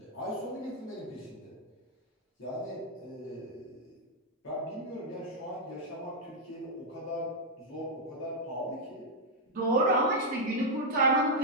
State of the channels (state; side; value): normal; both; correlation -0.02